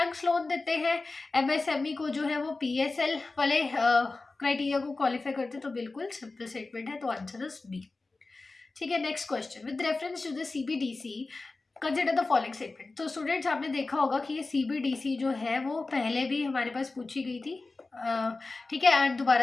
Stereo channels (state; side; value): quieter; right; 3.5 dB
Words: लोन देते हैं एमएसएमई को जो है वो पीएसएल वाले क्राइटेरिया को क्वालिफाई करते, तो बिल्कुल सिंपल स्टेटमेंट है, तो आंसर इज बी। ठीक है, next question, with reference to the CBDC consider the following statement. तो स्टूडेंट्स आपने देखा होगा कि ये सीबीडीसी जो है वो पहले भी हमारे पास पूछी गई थी, ठीक है, एंड